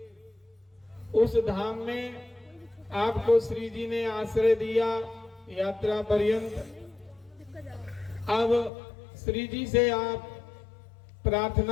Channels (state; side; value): drops out; right; at 8.7 s